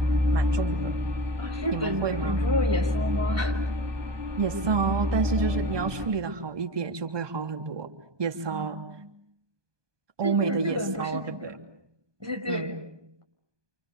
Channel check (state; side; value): late; left; 1.2 ms